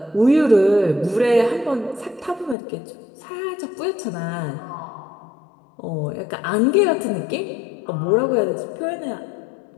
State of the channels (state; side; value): drops out; right; at 2.6 s